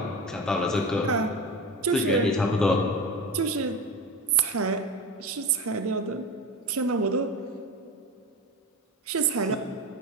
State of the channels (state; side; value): normal; both; correlation 0.27